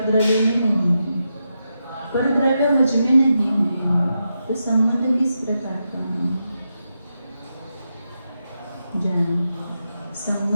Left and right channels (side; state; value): both; inverted; correlation -0.87